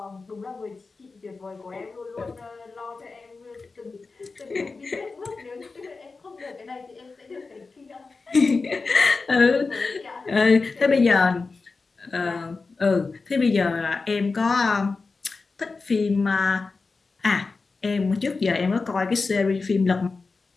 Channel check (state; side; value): quieter; right; 4.1 dB